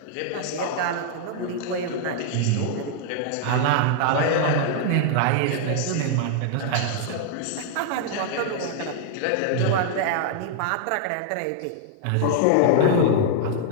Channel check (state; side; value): different; both; correlation -0.01